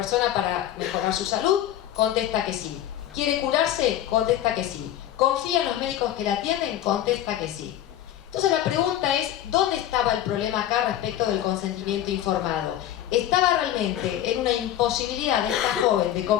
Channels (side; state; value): right; quieter; 12.0 dB